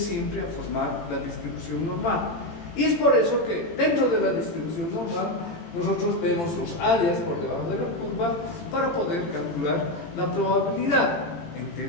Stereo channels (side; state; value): right; late; 18 ms